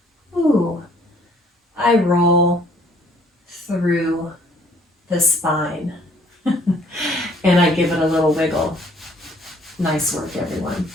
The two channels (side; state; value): both; normal; correlation 0.60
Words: I roll through the spine. And I give it a little wiggle. Nice work, everyone.